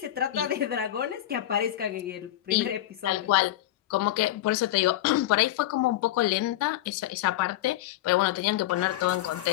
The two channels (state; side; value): quieter; right; 14.0 dB